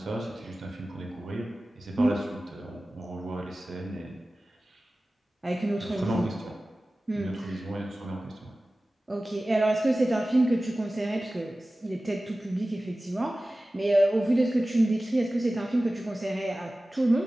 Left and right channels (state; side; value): normal; both; correlation 0.96